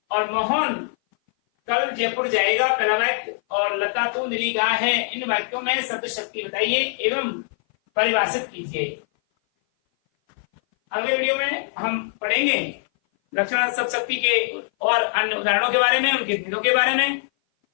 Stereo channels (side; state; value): right; silent; 58 dB below the other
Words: और मोहन कल जयपुर जाएगा पहला वाक्य, और लता तो नीली गाय है, इन वाक्यों में शब्द शक्ति बताइए एवं परिभाषित कीजिए। अगले वीडियो में हम पढ़ेंगे लक्षणार्थ शब्द शक्ति के और अन्य उदाहरणों के बारे में, उनके भेदों के बारे में।